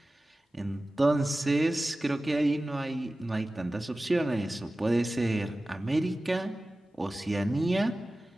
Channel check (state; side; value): normal; both; correlation 0.96